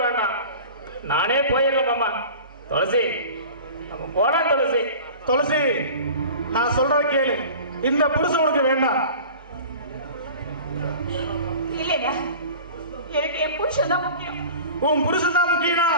வேண்டாம், நானே போயிடல மாமா. துளசி, நம்ம போலாம் துளசி. துளசி, நான் சொல்றத கேளு. இந்த புருஷன் உனக்கு வேண்டாம். இல்லையா, எனக்கு என் புருஷன் தான் முக்கியம். உன் புருஷன் தான் முக்கியம்னா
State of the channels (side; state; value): both; inverted; correlation -0.40